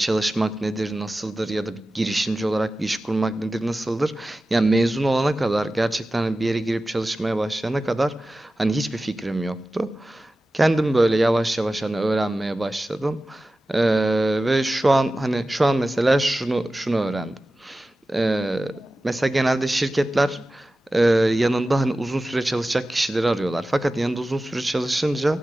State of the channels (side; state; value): both; normal; correlation 0.95